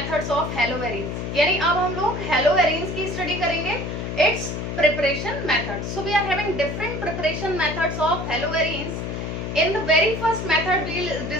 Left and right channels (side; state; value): left; noise; hum, 4 dB below the sound